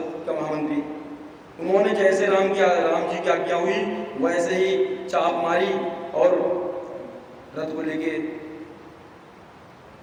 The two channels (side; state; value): both; identical; correlation 1.00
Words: का महामंत्री। उन्होंने जैसे राम जी की आज्ञा हुई वैसे ही चाप मारी और रथ को लेके